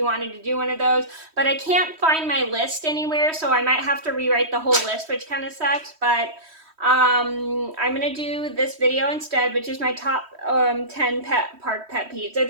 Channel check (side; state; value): left; late; 3.1 ms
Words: wanted to do one of those, but I can't find my list anywhere, so I might have to rewrite the whole list, which kind of sucks, but I'm gonna do this video instead, which is my top 10 park pet peeves. So